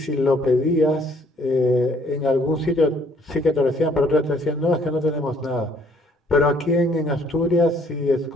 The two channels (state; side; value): normal; both; correlation 0.63